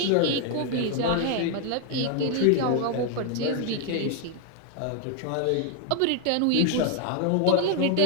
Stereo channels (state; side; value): different; both; correlation 0.00